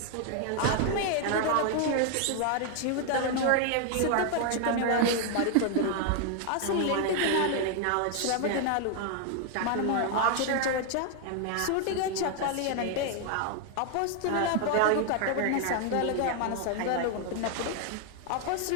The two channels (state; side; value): different; both; correlation 0.00